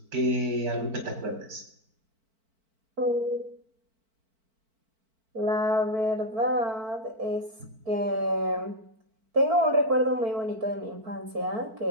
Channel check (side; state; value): left; late; 4.5 ms